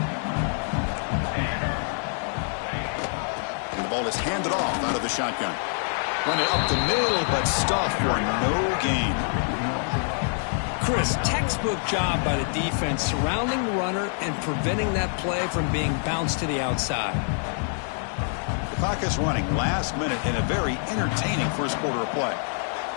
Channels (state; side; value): silent; right; 55 dB below the other